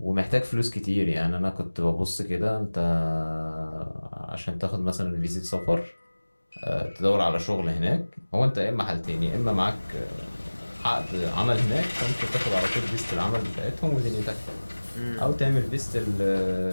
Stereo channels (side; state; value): both; inverted; correlation -1.00